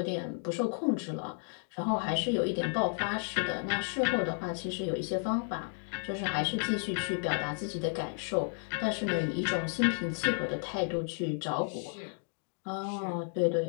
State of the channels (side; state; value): right; silent; 56 dB below the other